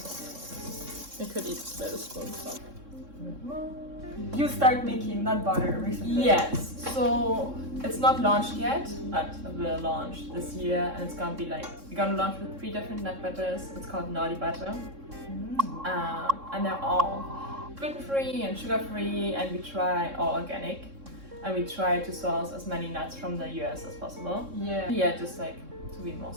I could eat with a spoonful. You start making nut butter recently. Yes, so it's not launched yet, but it will launch this year, and it's gonna be like, we're gonna launch with 3 different nut butters. It's called Naughty Butter. And they're all gluten-free and sugar-free, and we try all organic. And we try to source as many nuts from the US as possible. Yeah, just like to be more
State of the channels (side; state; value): left; late; 3.6 ms